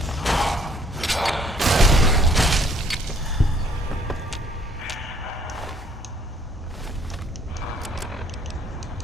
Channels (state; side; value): normal; both; correlation 0.61